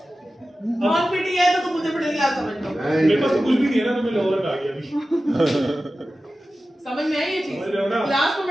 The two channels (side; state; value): both; normal; correlation 0.94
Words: नॉन पीटी है तो मुझे मिडिल क्लास समझ लो। मेरे पास तो कुछ भी नहीं है ना, तो मैं लोअर आ गया अभी। समझ में आई ये चीज? समझ रहे हो ना? क्लास तो